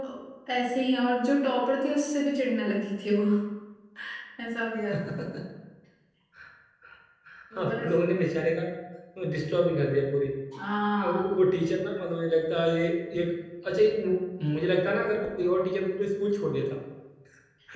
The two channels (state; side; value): identical; both; correlation 1.00